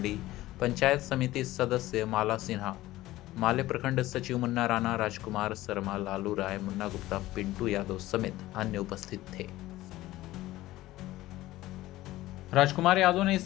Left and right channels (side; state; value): right; quieter; 16.5 dB